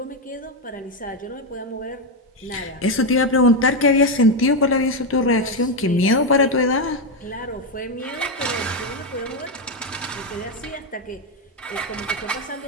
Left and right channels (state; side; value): normal; both; correlation 0.07